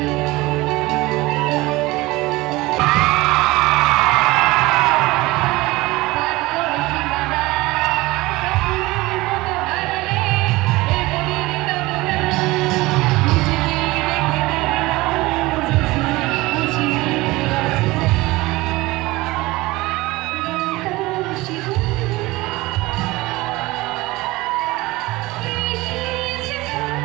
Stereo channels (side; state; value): left; quieter; 20.5 dB